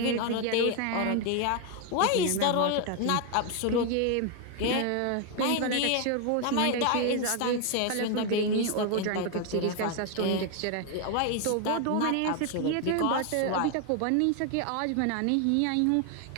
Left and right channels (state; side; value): different; both; correlation 0.01